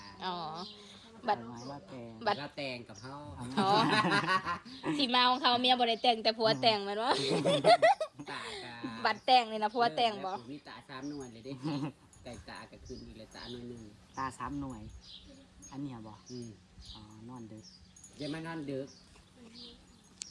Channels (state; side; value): identical; both; correlation 1.00